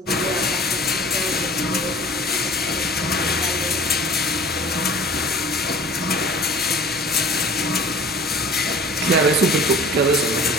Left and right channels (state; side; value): normal; both; correlation 0.45